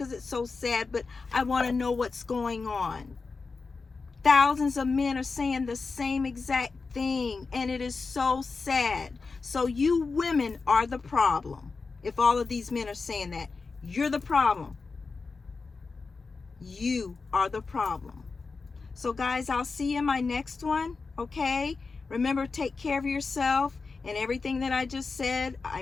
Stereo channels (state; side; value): quieter; right; 4.4 dB